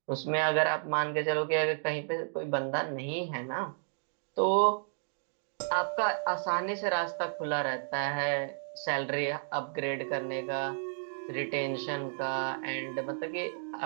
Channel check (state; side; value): silent; left; digital silence